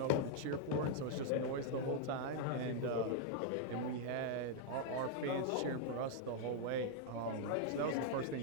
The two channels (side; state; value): both; different; correlation -0.01